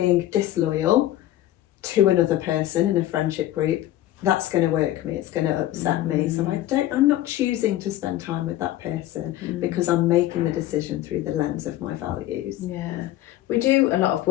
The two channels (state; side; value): quieter; right; 14.1 dB